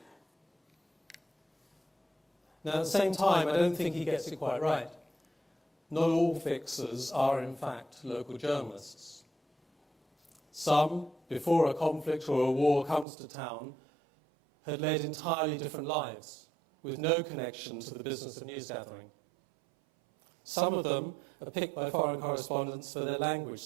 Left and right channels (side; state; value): left; drops out; at 13.1 s